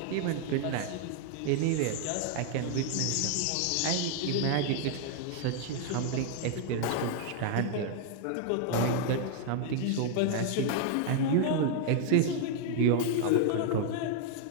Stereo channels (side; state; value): both; different; correlation 0.00